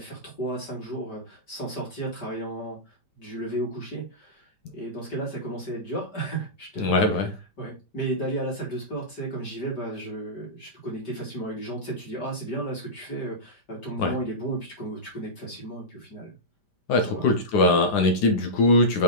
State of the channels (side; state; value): right; late; 5.0 ms